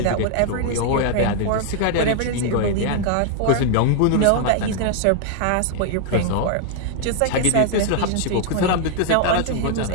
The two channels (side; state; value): both; different; correlation 0.00